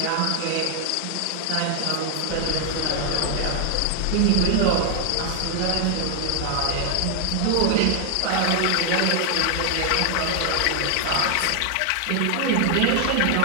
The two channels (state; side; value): different; both; correlation 0.00